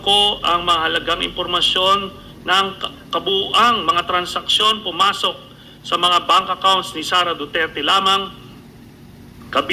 ang mahalagang impormasyon ng kabuuang mga transaksyon pumasok sa mga bank accounts ni Sara Duterte lamang,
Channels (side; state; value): both; identical; correlation 1.00